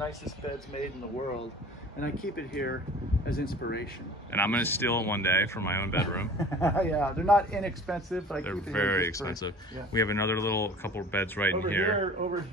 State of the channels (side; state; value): both; normal; correlation 0.44